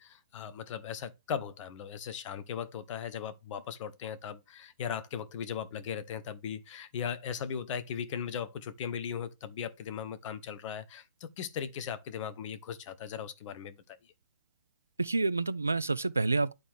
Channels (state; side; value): inverted; both; correlation -0.62